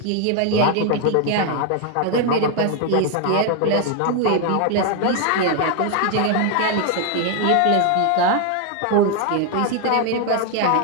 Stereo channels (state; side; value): different; both; correlation 0.01